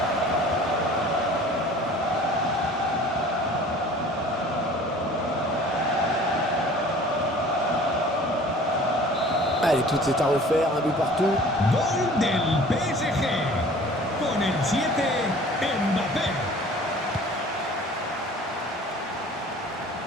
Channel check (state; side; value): normal; both; correlation 0.47